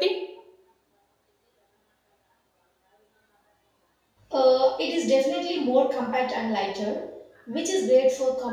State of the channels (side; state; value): both; identical; correlation 1.00